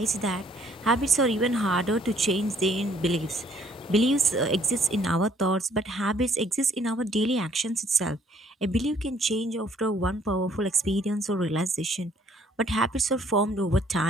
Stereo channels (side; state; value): both; normal; correlation 0.62